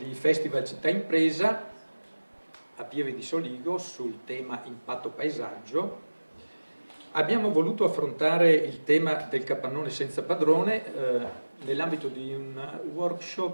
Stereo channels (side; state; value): both; inverted; correlation -1.00